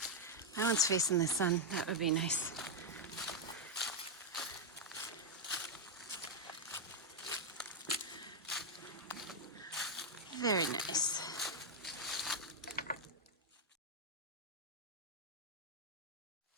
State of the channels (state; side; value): normal; both; correlation 0.00